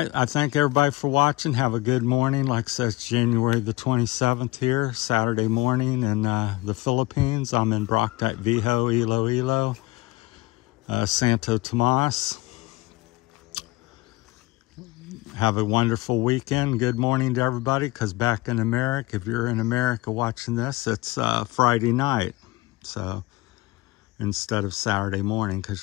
I thank everybody for watching. Have a good morning. Like I said, it's January the 27th here, Saturday morning in the Philippines. I'm in Broctite Viho, Iloilo, Santo Tomas. have a wonderful weekend. Good morning to everybody, because back in America, if you're in America watching this, it's Friday night. So instead of Saturday morning, because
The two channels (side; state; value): right; quieter; 20.6 dB